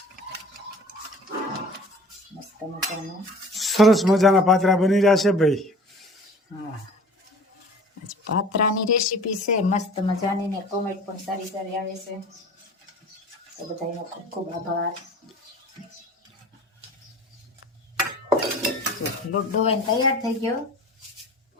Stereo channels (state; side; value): normal; both; correlation 0.44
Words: મસ્ત મજાના સરસ મજાના પાત્રા બની રહ્યા છે ભાઈ. હા, આજ પાત્રાની રેસીપી છે મસ્ત મજાની ને કોમેન્ટ પણ સારી સારી આવે છે. તો બધાનો ખૂબ ખૂબ આભાર. લોટ ડોવાઈને તૈયાર થઈ ગયો.